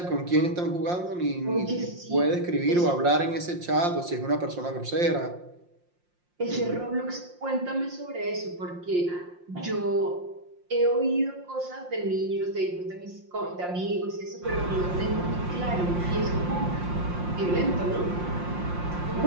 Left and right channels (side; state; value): left; late; 5.7 ms